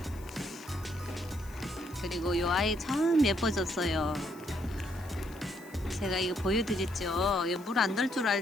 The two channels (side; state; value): left; noise; hiss, 23 dB below the sound